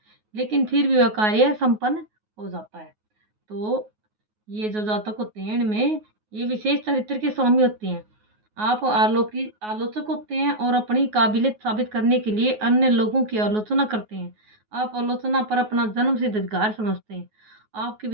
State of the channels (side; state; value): left; late; 9.4 ms